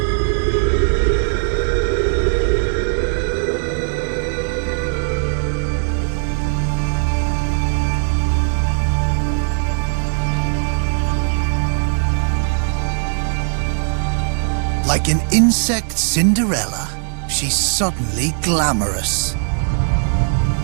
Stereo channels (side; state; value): left; silent; digital silence